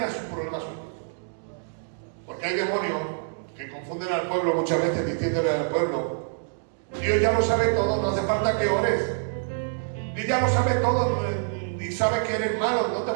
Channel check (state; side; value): silent; left; digital silence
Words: es un problema suyo. Porque hay demonios que confunden al pueblo muchas veces diciéndole al pueblo: Dios ya lo sabe todo, no hace falta que ores. Dios ya lo sabe todo y sabe que eres malo, no te